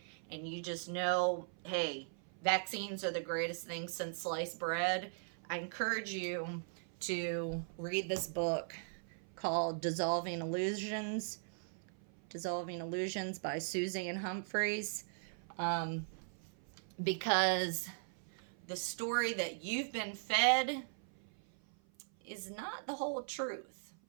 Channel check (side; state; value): left; silent; 52 dB below the other